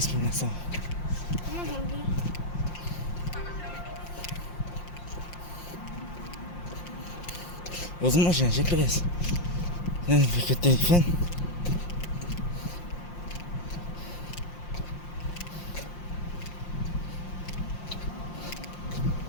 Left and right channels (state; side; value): late; right; 5.7 ms